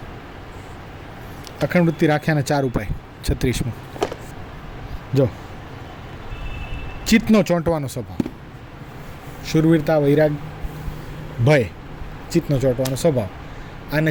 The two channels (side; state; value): both; identical; correlation 1.00